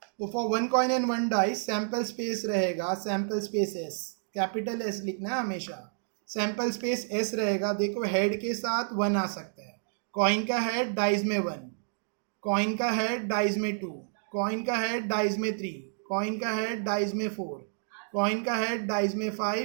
तो for 1 coin and 1 dice sample space रहेगा, sample space S, capital S लिखना है हमेशा, सैंपल स्पेस एस रहेगा। देखो हेड के साथ 1 आ सकता है, कॉइन का हेड डाइस में 1, कॉइन का हेड डाइस में 2, कॉइन का हेड डाइस में 3, कॉइन का हेड डाइस में 4, कॉइन का हेड डाइस में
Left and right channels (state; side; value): silent; left; digital silence